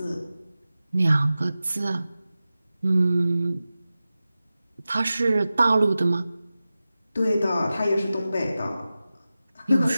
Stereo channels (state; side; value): inverted; both; correlation -0.95